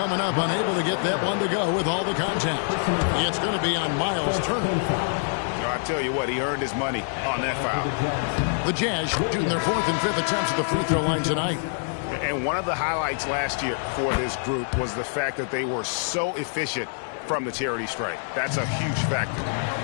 up. Unable to get that one to go with all the contact. It's going to be on Miles Turner. tell you what, he earned his money on that foul. The Jazz shooting their 4th and 5th attempts at the free throw line tonight. And one of the highlights last year for this group was the fact that they were so efficient from the charity stripe. That's a huge factor.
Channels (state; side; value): silent; right; digital silence